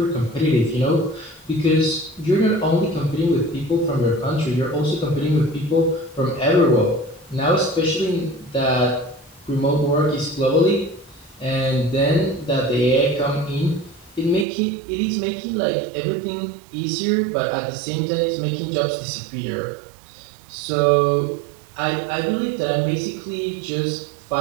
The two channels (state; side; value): drops out; left; at 14.5 s